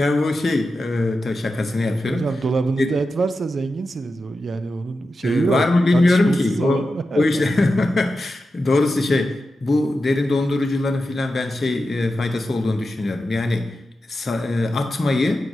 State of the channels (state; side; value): normal; both; correlation 0.91